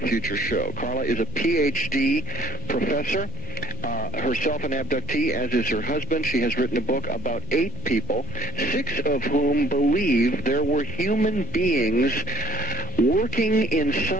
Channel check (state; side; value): normal; both; correlation 0.53